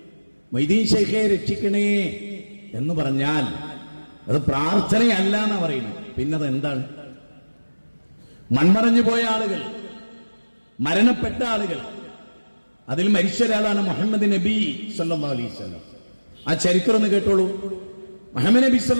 മൊയ്തീൻ ശൈഖെ രക്ഷിക്കണേ എന്ന് പറഞ്ഞാൽ അത് പ്രാർത്ഥനയല്ല എന്നാ പറയുന്നത്. പിന്നത് എന്താണ്? മൺമറഞ്ഞു പോയ ആളുകൾ, മരണപ്പെട്ട ആളുകൾ, അതിൽ മരിച്ച ഒരാളാണ് മുഹമ്മദ് നബി സല്ലല്ലാഹു അലൈഹി വസല്ലം. ആ ചരിത്രം ഒന്ന് കേട്ടോളൂ. മുഹമ്മദ് നബി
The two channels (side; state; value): both; inverted; correlation -1.00